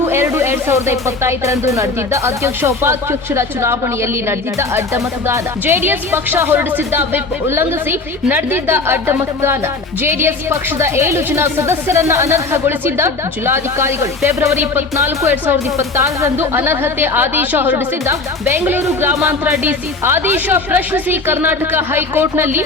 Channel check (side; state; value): right; quieter; 3.6 dB